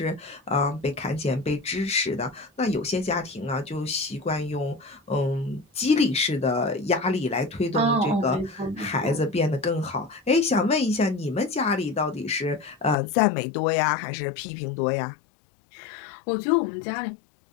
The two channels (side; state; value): right; drops out; at 13.0 s